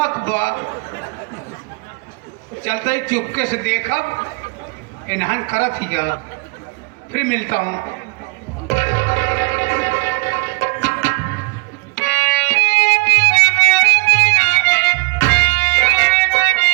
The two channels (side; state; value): left; quieter; 30.0 dB